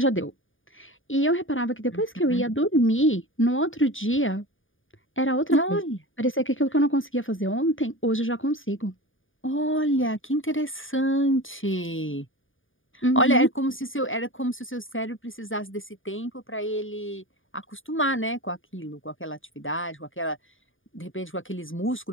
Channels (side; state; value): right; late; 0.58 ms